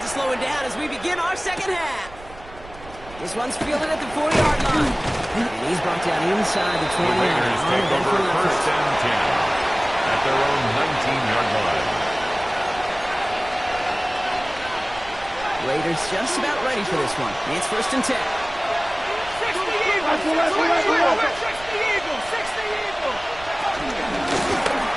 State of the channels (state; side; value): noise; right; rumble, 18 dB below the sound